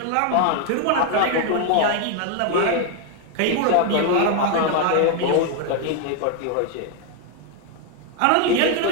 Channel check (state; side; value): different; both; correlation 0.01